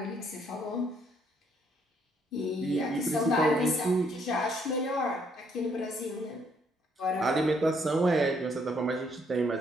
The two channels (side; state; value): both; normal; correlation 0.69